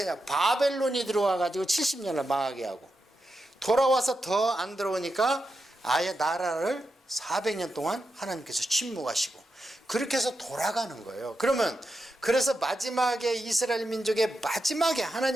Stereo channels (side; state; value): both; normal; correlation 0.88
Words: 하냐, 바벨론이 들어와 가지고 70년을 망하게 하고, 돌아와서 더 안 들어오니까 아예 나라를 400년 동안 하나님께서 침묵하시고, 그렇게 해서 돌아가는 거예요. 그래서 마지막에 이스라엘 민족의 마지막에